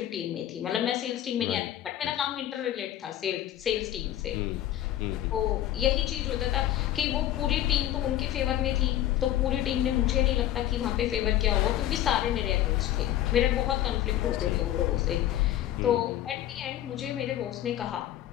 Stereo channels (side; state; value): right; quieter; 12.8 dB